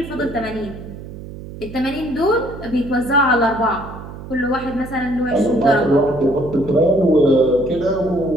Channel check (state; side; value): noise; right; hum, 13 dB below the sound